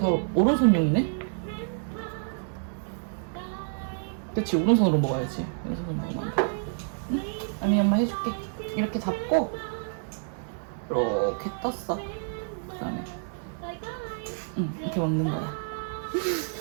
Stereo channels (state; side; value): silent; left; 59 dB below the other